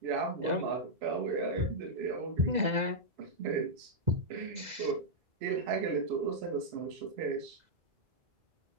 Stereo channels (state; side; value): late; left; 2.0 ms